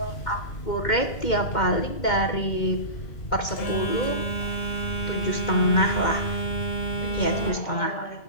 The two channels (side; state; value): right; late; 2.1 ms